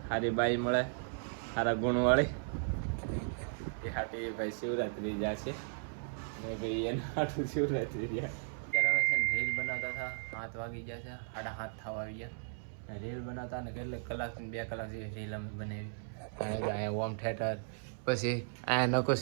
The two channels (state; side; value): silent; left; 54 dB below the other